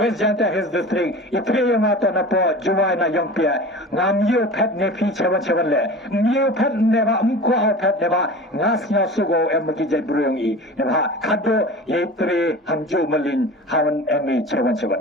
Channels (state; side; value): normal; both; correlation 0.36